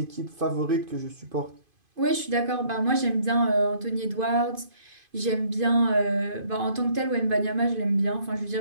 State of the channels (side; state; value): left; late; 2.5 ms